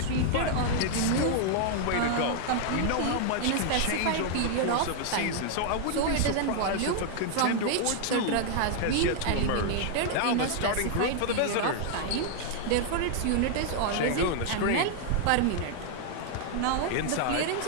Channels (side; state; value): both; different; correlation 0.00